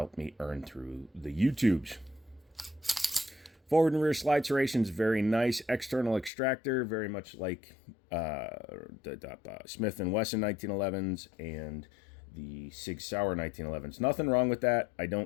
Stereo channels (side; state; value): right; drops out; at 6.3 s